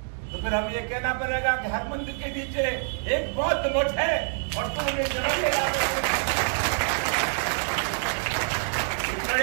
तो फिर हम ये कहना पड़ेगा कि हर मंदिर के नीचे एक बौद्ध मठ है और तुम उन्हें जगह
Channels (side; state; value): left; silent; 61 dB below the other